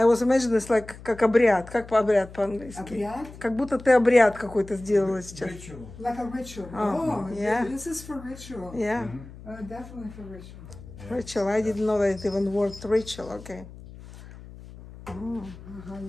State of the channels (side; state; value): left; noise; hum, 17 dB below the sound